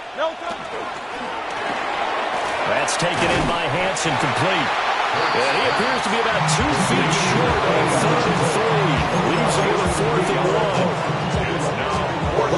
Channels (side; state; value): both; identical; correlation 1.00